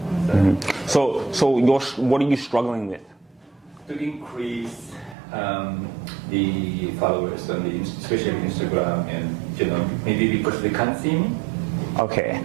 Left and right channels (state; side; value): drops out; left; at 5.2 s